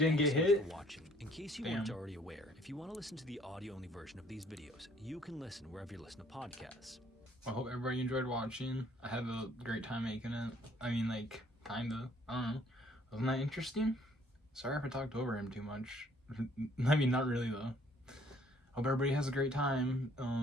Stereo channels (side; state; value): both; normal; correlation 0.60